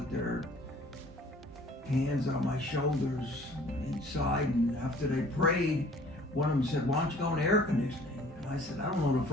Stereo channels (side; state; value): both; normal; correlation 0.52